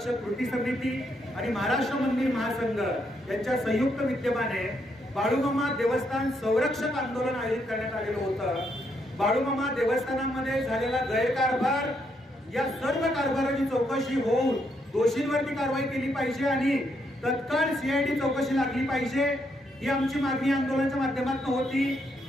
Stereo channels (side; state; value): both; normal; correlation 0.76